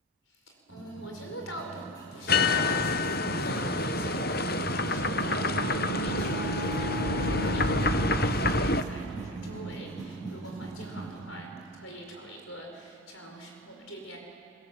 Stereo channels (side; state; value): both; normal; correlation 0.25